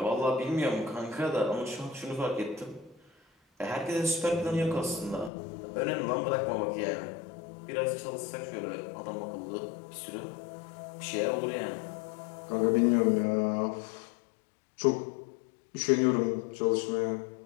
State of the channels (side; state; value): right; drops out; at 5.3 s